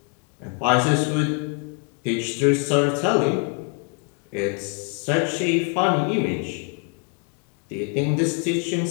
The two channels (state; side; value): quieter; right; 39.8 dB